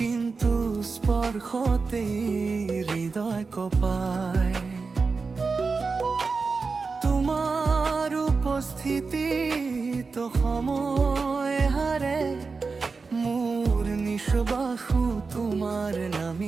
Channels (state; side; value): quieter; left; 4.5 dB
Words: স্পৰ্শতে হৃদয় কঁপায়। তোমাৰ উপস্থিতিত সময় হাৰে, মোৰ নিশ্বাসো তোমাৰ